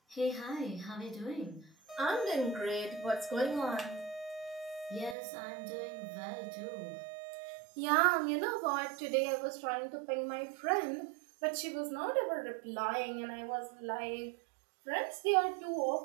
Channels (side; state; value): left; drops out; at 5.2 s